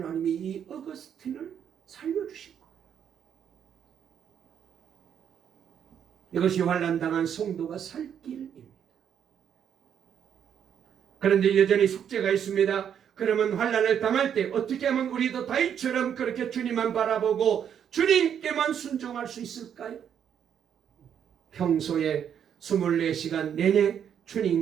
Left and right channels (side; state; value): left; quieter; 8.6 dB